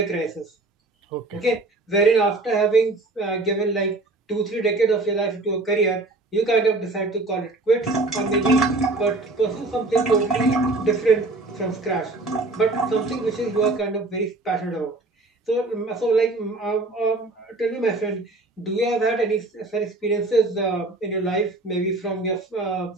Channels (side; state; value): left; quieter; 3.1 dB